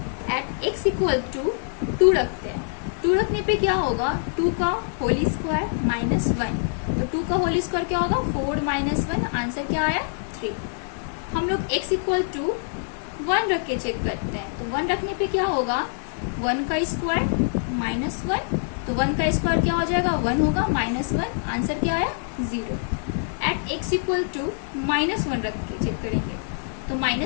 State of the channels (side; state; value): right; silent; 62 dB below the other